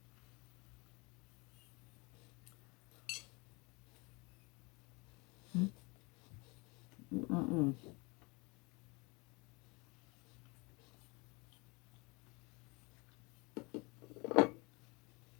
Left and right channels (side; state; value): right; quieter; 27.2 dB